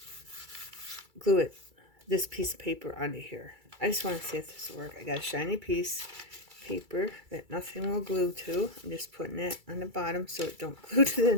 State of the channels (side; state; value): left; late; 2.3 ms